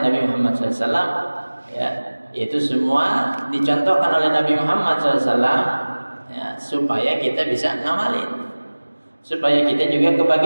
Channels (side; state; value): both; inverted; correlation -1.00